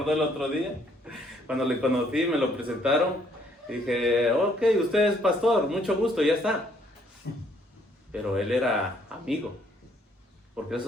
el otro día, cuando le conocí, me lo presentaron, dije, ok, usted es pastor, mucho gusto, ya está. Pero él era amigo, porque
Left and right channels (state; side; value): normal; both; correlation 0.66